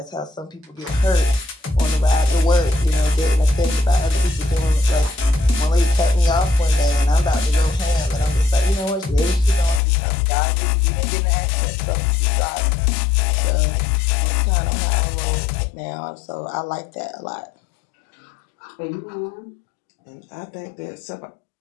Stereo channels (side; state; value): right; drops out; at 9.8 s